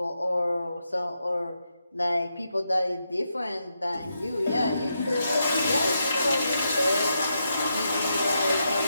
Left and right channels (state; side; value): inverted; both; correlation -0.83